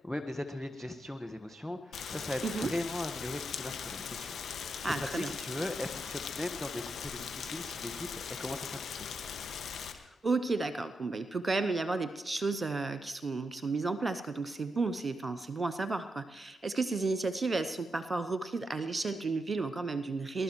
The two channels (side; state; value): both; normal; correlation 0.85